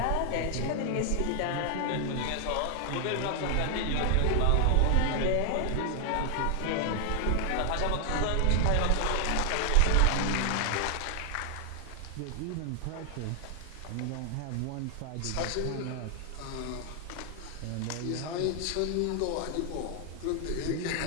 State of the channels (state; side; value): different; both; correlation 0.00